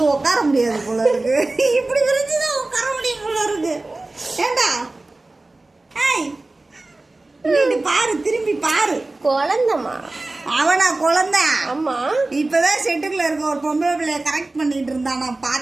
உட்கார முடியாது போல இருக்கு. இப்படி விரிச்சுதான் உட்கார முடியும் போல இருக்கு. ஏண்டா பாரு, திரும்பி பாரு. குழந்தம்மா அவனா குழந்தை? ஆமா, இப்பதான் செட்டுக்குள்ள இருக்க ஒரு பொம்பளை பிள்ளைய கரெக்ட் பண்ணிட்டு இருந்தா நான்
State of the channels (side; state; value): left; quieter; 3.1 dB